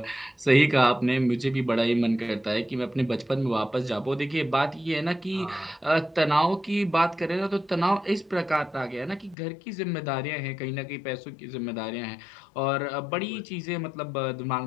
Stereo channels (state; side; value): drops out; right; at 9.3 s